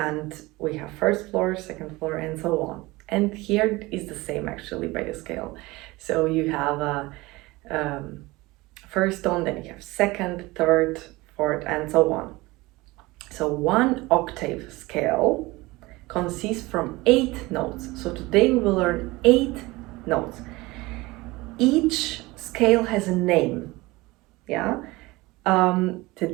we have first floor, second floor, and so on. And here is the same actually by the scale. So you have a first tone, then you have second, third, fourth, and so on. So one octave scale consists from 8 notes. So today we will learn 8 notes. Each scale has a name. Yeah.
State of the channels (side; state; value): left; quieter; 21.4 dB